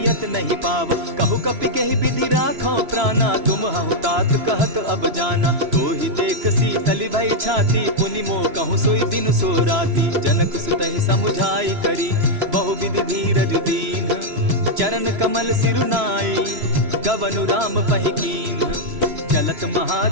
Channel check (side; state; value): left; late; 3.0 ms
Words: नहीं पावा। कहु कपि केहि विधि राखो प्राणा, तुम हहु तात कहत अब जाना। तो ही देख शीतल भई छाती, पुनि मो कहूँ सोई दिन सो राती। जनक सुतहि समुझाई करी, बहुविधि धीरज दीन। चरण कमल सिरुनाई, गवनु राम पहि कीन। चलत